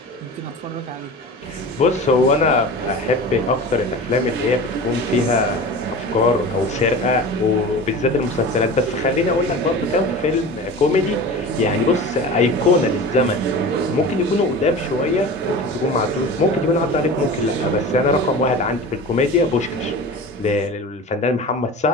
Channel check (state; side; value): normal; both; correlation 0.34